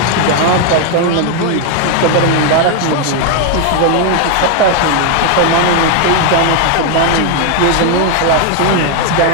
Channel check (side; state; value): both; different; correlation 0.01